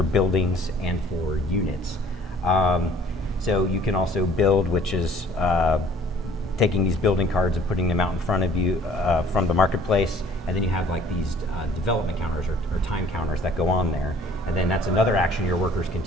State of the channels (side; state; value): both; normal; correlation 0.55